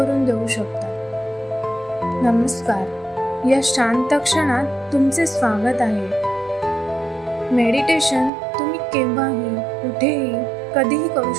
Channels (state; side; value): drops out; left; at 8.3 s